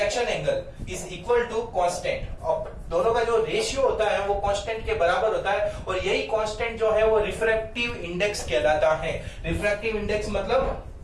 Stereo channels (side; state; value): both; identical; correlation 1.00